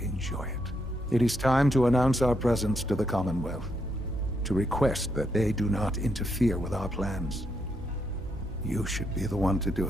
enjoy it. It is time to announce our presence to the Commonwealth, to request that they do not interfere with our plans. You should be the one to do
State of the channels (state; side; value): normal; both; correlation 0.78